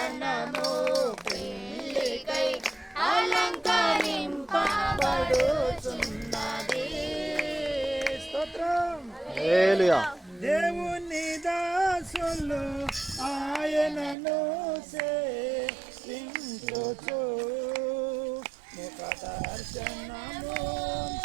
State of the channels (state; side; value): drops out; left; at 14.2 s